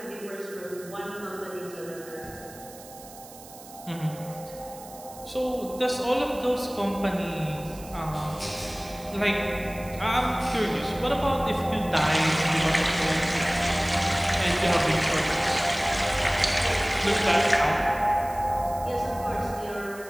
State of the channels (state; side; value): noise; right; hiss, 18 dB below the sound